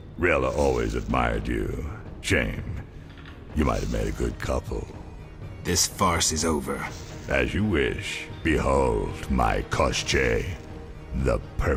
Rilla always admired you. Shame. You might have made a good couple. This farce is over. As you wish. Behold my Koschei, the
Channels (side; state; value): both; identical; correlation 1.00